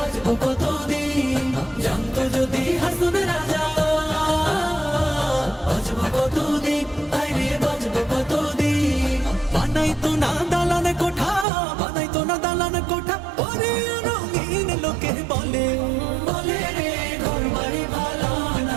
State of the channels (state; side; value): drops out; left; at 11.5 s